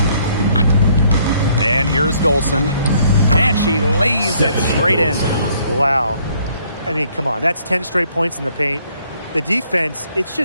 And here's Dolson. And she lays it straight in. Wow. I mean, come on. That's 10 straight points in the paint. The defense, it's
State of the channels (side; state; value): both; inverted; correlation -0.65